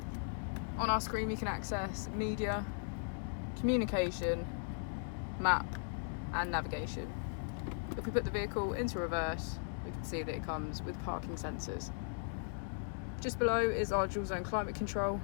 On our screen, we can access media, communication, map, and navigation. If we put the vehicle into reverse, we can see that it comes with parking sensors. Just below is our dual zone climate control,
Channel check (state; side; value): silent; right; digital silence